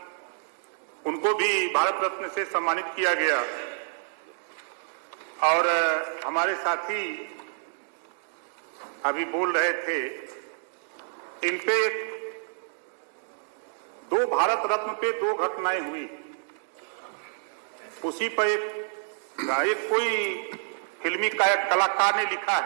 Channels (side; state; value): left; silent; digital silence